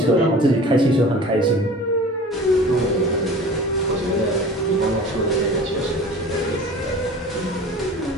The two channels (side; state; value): both; normal; correlation 0.41